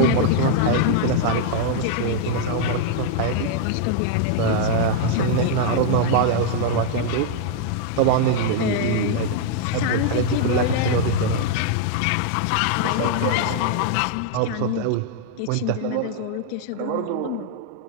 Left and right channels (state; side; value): different; both; correlation 0.00